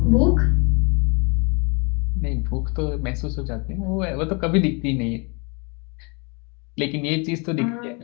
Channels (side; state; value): right; quieter; 31.7 dB